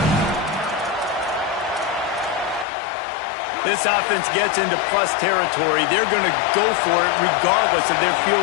This offense gets into plus territory. They're going to go for it regardless of their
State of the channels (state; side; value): drops out; right; at 2.7 s